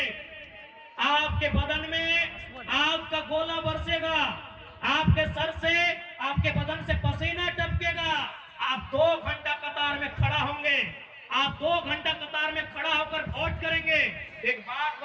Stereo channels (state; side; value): identical; both; correlation 1.00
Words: आपके बदन में आग का गोला बरसेगा, आपके सर से, आपके बदन से पसीना टपकेगा। आप 2 घंटा कतार में खड़ा होंगे, आप 2 घंटा कतार में खड़ा होकर वोट करेंगे। एक बात